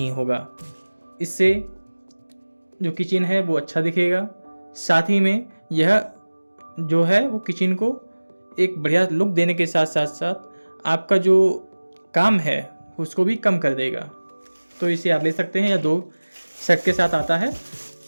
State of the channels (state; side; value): inverted; both; correlation -1.00